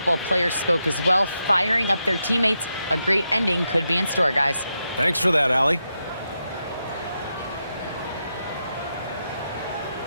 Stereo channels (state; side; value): inverted; both; correlation -0.85